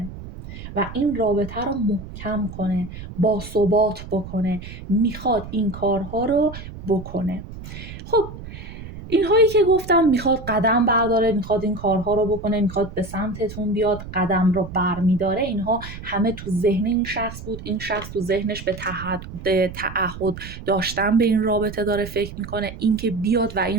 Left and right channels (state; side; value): noise; right; rumble, 12 dB below the sound